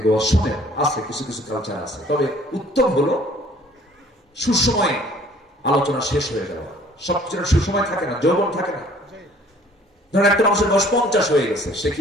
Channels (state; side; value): normal; both; correlation 0.55